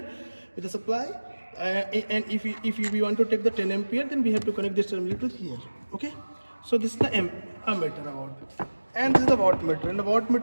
with the supply. And if we want to take the 10 ampere, then we have to connect this terminal to here. Okay, so this is the ammeter about, and this is the voltmeter. In the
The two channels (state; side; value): inverted; both; correlation -1.00